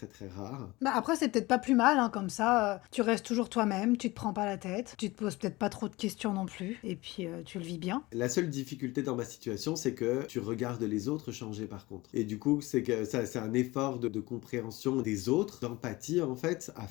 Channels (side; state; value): right; quieter; 21.0 dB